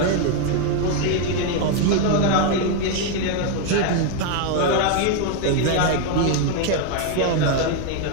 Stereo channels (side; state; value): both; different; correlation 0.01